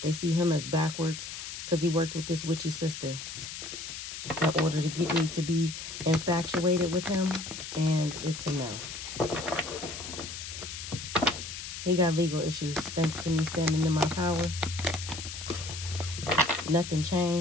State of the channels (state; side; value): noise; left; hiss, 8 dB below the sound